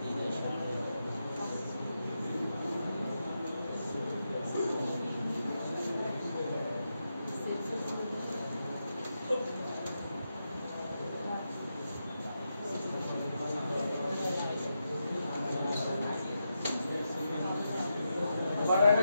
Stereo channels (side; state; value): both; inverted; correlation -0.87